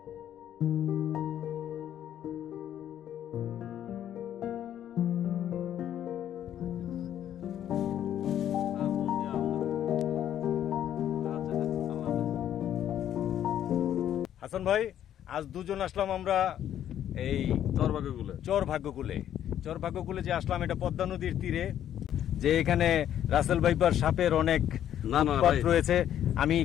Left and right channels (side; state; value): right; quieter; 10.7 dB